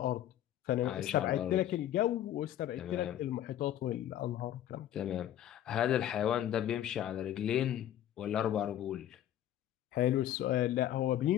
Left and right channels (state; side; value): quieter; right; 11.7 dB